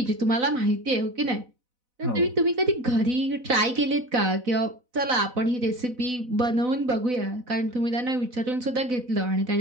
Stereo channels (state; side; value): late; left; 4.0 ms